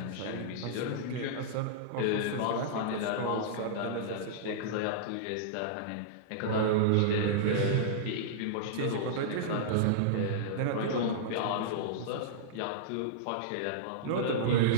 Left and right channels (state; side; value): different; both; correlation -0.03